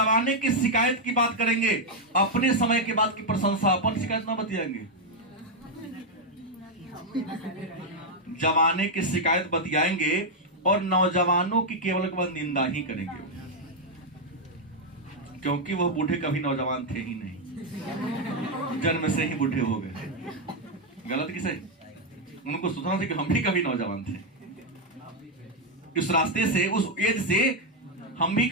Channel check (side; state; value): both; normal; correlation 0.01